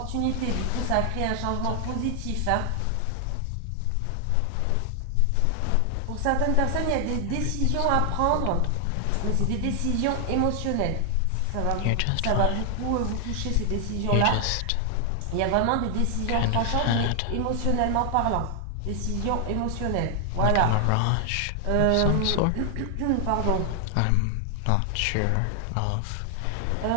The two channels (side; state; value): both; different; correlation 0.00